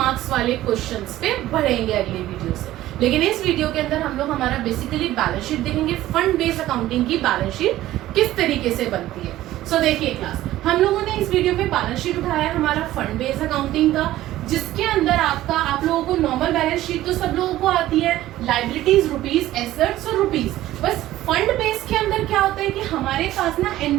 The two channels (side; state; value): left; quieter; 14.9 dB